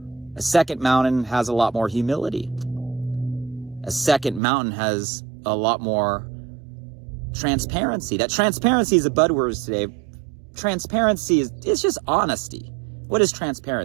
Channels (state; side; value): drops out; left; at 4.4 s